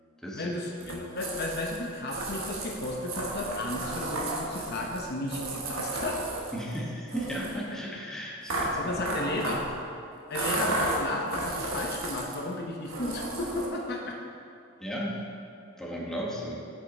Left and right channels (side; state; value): both; normal; correlation 0.20